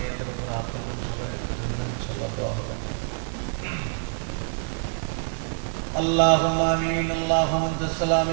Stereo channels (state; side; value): silent; left; digital silence